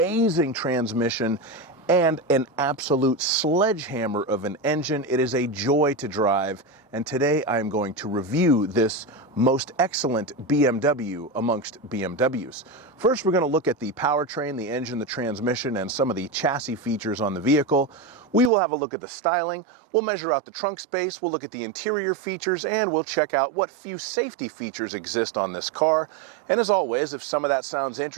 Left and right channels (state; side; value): drops out; left; at 18.5 s